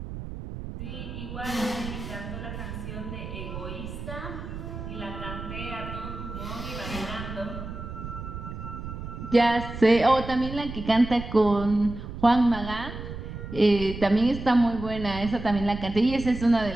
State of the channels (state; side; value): noise; right; rumble, 9 dB below the sound